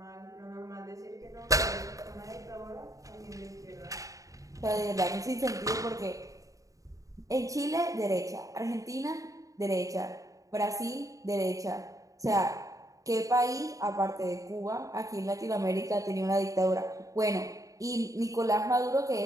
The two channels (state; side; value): late; left; 0.16 ms